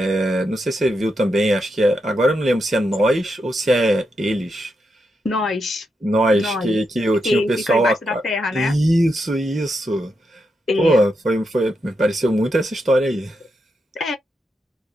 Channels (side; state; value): both; normal; correlation 0.84